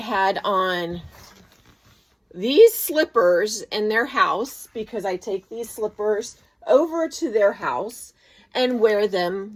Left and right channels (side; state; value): both; identical; correlation 1.00